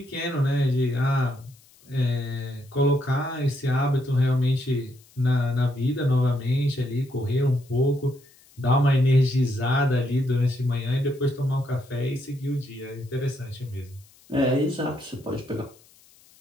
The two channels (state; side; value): noise; left; hiss, 28 dB below the sound